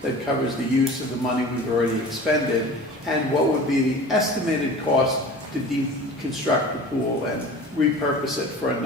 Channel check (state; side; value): normal; both; correlation 0.39